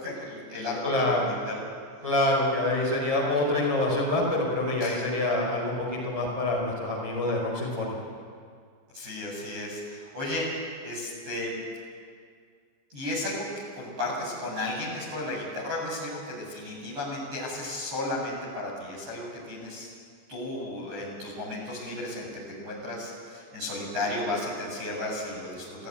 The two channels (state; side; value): late; left; 14 ms